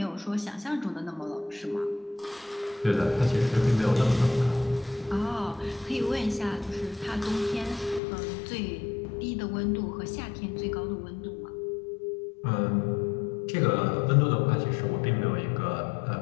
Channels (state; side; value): drops out; right; at 8.0 s